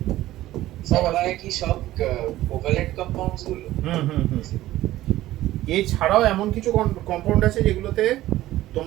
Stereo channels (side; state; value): left; quieter; 15.3 dB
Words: সবাই কি সব কোভালেন্ট কম্পাউন্ডস গুলো? এছাড়াও এমন কিছু কম্পাউন্ড আছে যেগুলোতে